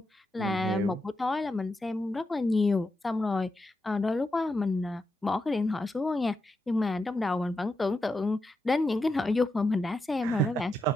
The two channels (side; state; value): both; normal; correlation 0.86